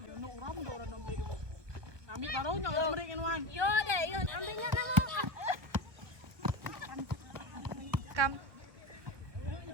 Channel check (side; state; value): left; late; 1.5 ms